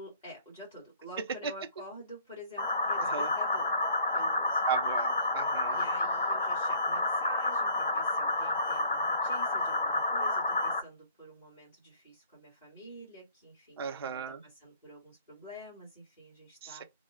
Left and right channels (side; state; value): both; inverted; correlation -0.56